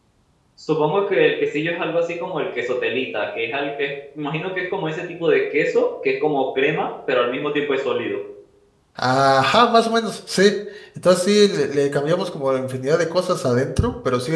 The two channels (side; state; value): both; identical; correlation 1.00